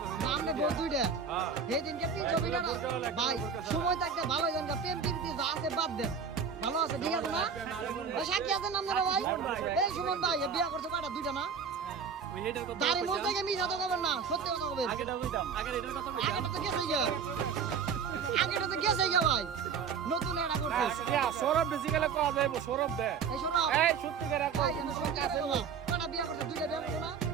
নামে বউ 2টা। সেদিনকে 300 ফিট ভাই সময় থাকতে ভালো জান প্রেম প্রীতি যা আছে বাদ দেন, ভালো আছে ঠিক আছে না? ওই সাক্ষী আছেন আপনারা ভাই? এই সুমন ভাই এ বিয়া করছে কয়টা? 2টা না? দাড়ি মুছ থেকে মিছা তো করবেন না, সত্যি কথা বলবেন। আগেটা তো গেছে গিয়া। আগেটা তো গেছে গিয়া ভাই, নতুন এটা করছে। সৌরভ বেসিক্যালি কোয়া যাইব, সৌরভ দে। এই সৌরভ, এই সত্যি করে ভাই আমি সত্যি কথা বলবো। কয়টা বিয়া করছে? 2টা বিয়া করছে না?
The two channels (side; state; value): left; quieter; 6.3 dB